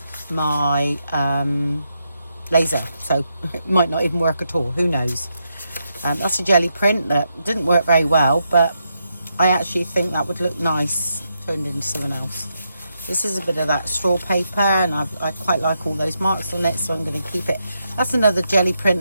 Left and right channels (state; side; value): inverted; both; correlation -0.82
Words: my laser, so it might not even work at all, who knows. That's a jelly print that didn't work very well, but I actually think that would look nice turned into something else. This is a bit of that straw paper and I quite like all those marks on it, so I'm going to keep it. That's another jelly